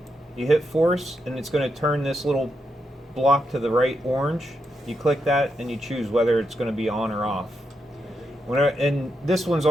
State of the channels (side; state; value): both; normal; correlation 0.83